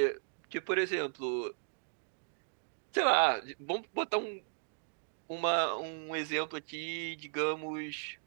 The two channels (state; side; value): silent; left; digital silence